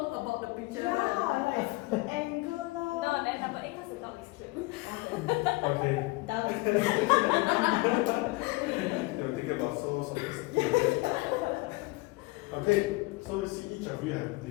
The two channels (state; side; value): quieter; right; 22.8 dB